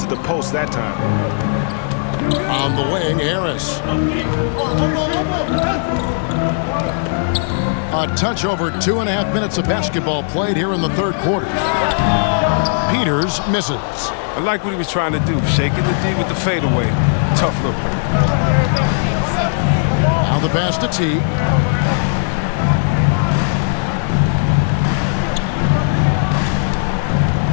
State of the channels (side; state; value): right; silent; 68 dB below the other